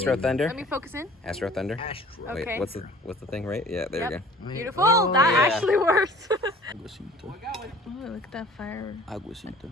Thunder. Let me focus in. Astro Thunder. Astro. Okay. Wait, what's the thing, right? Yeah, there Yep. we go. Beautiful. Oh, that yeah. actually worked. Aguacito. Oh, look at that fire. Aguacito.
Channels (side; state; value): both; normal; correlation 0.48